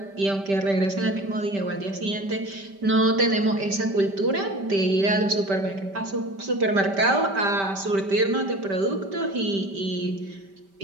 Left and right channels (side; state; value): left; late; 5.1 ms